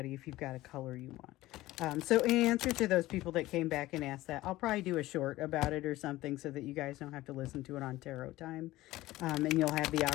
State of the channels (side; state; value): right; quieter; 17.2 dB